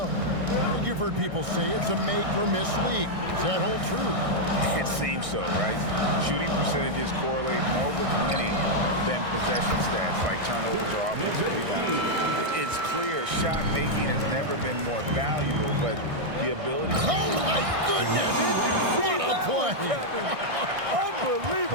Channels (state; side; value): late; left; 1.6 ms